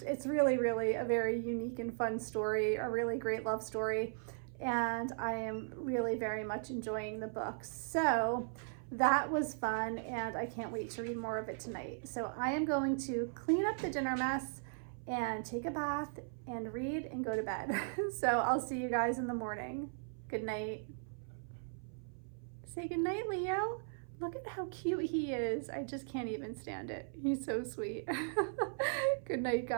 it's really, really a very unique and fun story, a really great love story. And I am really very much enjoying the book. So that was fun, and I can't wait to read more of it tonight. So I am going to clean up the dinner mess and take a bath and read and go to bed. So I'll see you guys in the morning. Good night. Say good night, Leo. Look at how cute he is. I just can't even stand it. He's so sweet. Good night,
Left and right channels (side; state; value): left; silent; 53 dB below the other